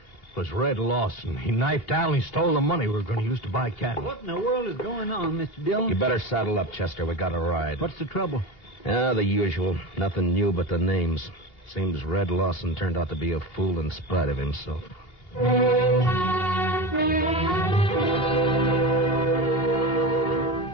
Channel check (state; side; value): late; right; 2.8 ms